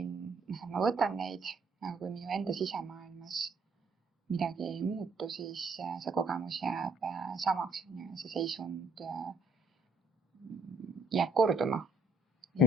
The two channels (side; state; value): both; normal; correlation 0.65